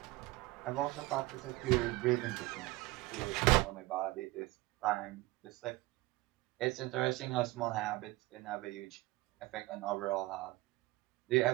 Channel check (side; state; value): left; quieter; 20.2 dB